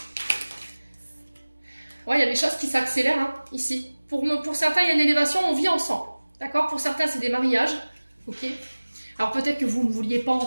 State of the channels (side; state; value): both; inverted; correlation -1.00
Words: Ouais, il y a des choses qui s'accélèrent hein, ici. Pour certains, il y a une élévation, on vit ensemble. D'accord? Pour certains, c'est des mariages. Ok? Alors peut-être que vous ne vouliez pas